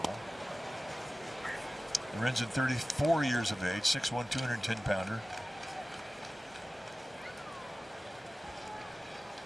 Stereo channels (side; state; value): both; normal; correlation 0.96